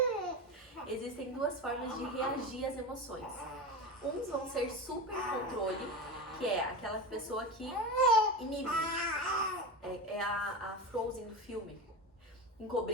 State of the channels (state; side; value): normal; both; correlation 0.23